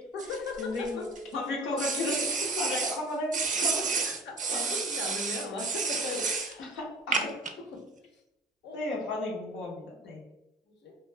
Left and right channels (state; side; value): normal; both; correlation 0.41